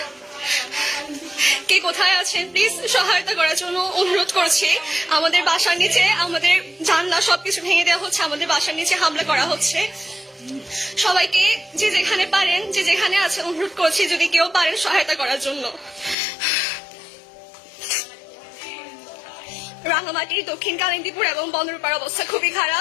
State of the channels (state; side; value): drops out; right; at 16.2 s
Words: কে কোথায় আছেন please সহায়তা করার জন্য অনুরোধ করছি। আমাদের বাসার নিচে আমাদের জানলা সবকিছু ভেঙে দেওয়া হচ্ছে, আমাদের বাসার নিচে হামলা করা হচ্ছে। সবাইকে যে যেখানে পারেন, যে যেখানে আছেন, অনুরোধ করছি যদি কেউ পারেন সহায়তা করার জন্য। রাঙামাটি, দক্ষিণ কালিন্দীপুর এবং বন্দরপাড়ার অবস্থা খুবই